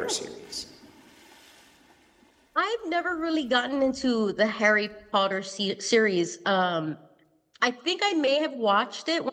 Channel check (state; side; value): identical; both; correlation 1.00